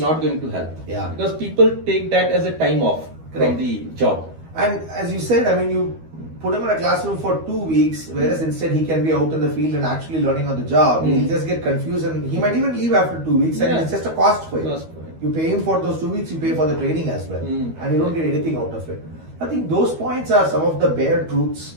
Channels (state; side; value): late; left; 12 ms